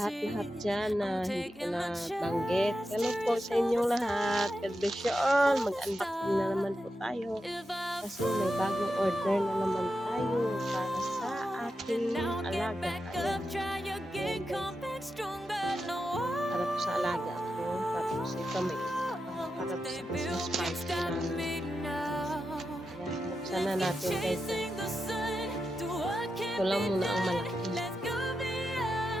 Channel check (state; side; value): normal; both; correlation 0.88